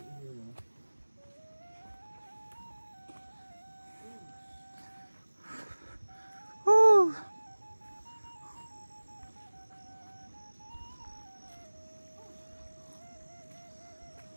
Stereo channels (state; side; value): inverted; both; correlation -1.00